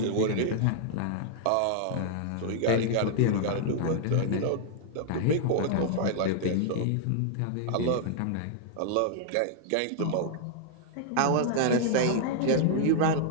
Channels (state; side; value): different; both; correlation -0.01